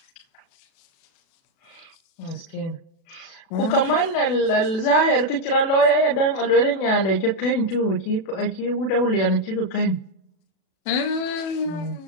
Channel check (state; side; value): late; right; 36 ms